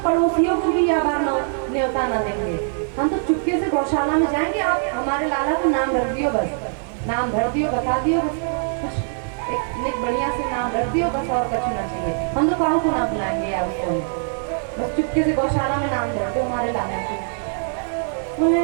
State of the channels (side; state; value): left; silent; digital silence